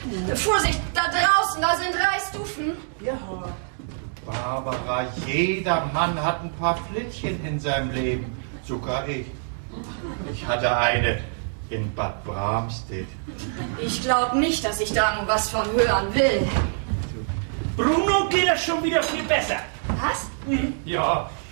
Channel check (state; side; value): silent; left; digital silence